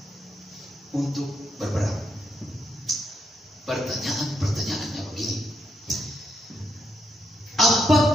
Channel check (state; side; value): normal; both; correlation 0.79